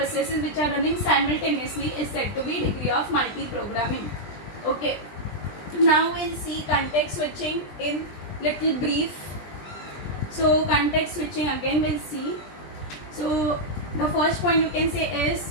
which are running simultaneously is said to be degree of multiprogramming. Okay. Now we'll see context switching in little brief. So context switching again we'll see. So the first point you can say is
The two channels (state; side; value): late; right; 20 ms